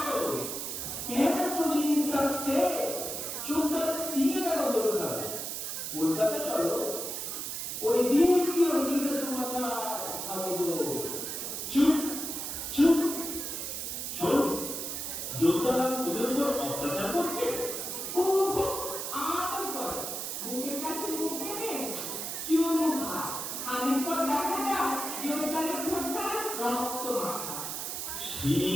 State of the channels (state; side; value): noise; right; hiss, 4 dB below the sound